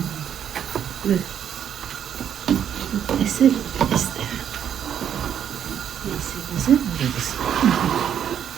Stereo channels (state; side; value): quieter; left; 9.2 dB